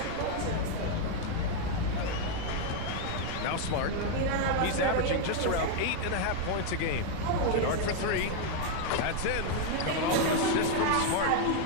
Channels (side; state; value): both; different; correlation 0.00